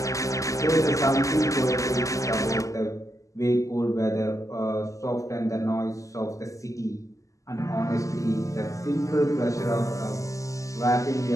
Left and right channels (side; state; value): right; late; 0.16 ms